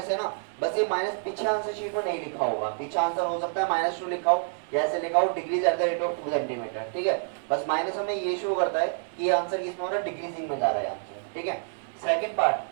है ना, बस ये माइनस पीछे आंसर शीट में नहीं लिखा होगा, पीछे आंसर हो सकता है -2 लिखा हो, जैसे लिखा हो decrease at the rate of 2 centimetre, ठीक है। बस माइनस हमें ये शो करता है कि ये आंसर किसमें हो रहा है, डिक्रीजिंग में जा रहा है आंसर, ठीक है। सेकंड पार्ट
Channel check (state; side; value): silent; left; digital silence